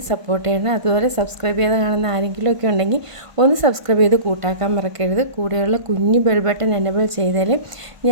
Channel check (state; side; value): late; left; 1.5 ms